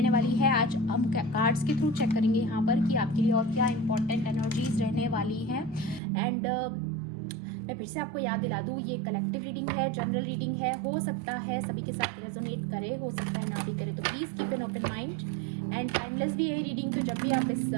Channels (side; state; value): left; drops out; at 6.0 s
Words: वाली है। आज हम कार्ड्स के थ्रू चेक करेंगे यहाँ पर कि आपके लिए और क्या इंपॉर्टेंट एनर्जीज रहने वाली हैं। एंड मैं फिर से आपको याद दिला दूँ, ये कलेक्टिव रीडिंग है, जनरल रीडिंग है, हो सकता है सभी के साथ रेजोनेट करे, हो सकता है ना भी करे, तो please keep an open mind and timeless भी है रीडिंग। तो जब भी आप इस